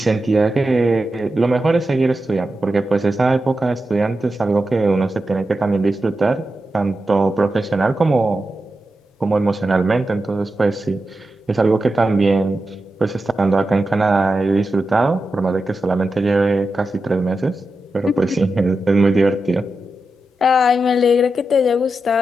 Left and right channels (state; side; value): normal; both; correlation 0.90